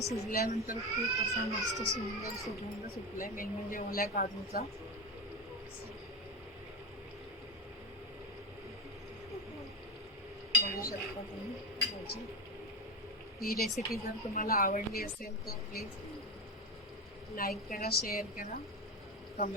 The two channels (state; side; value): normal; both; correlation 0.19